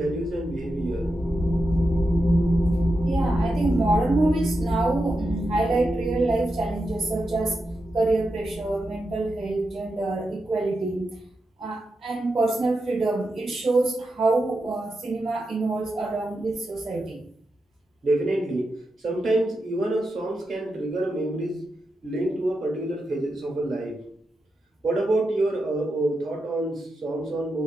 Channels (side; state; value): both; normal; correlation 0.88